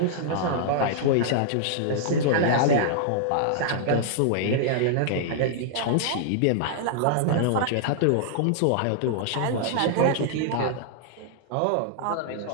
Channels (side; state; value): both; different; correlation -0.01